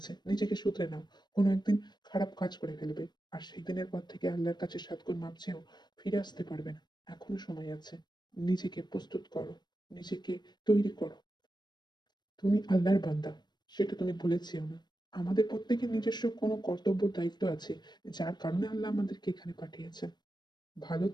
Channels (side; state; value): right; late; 0.21 ms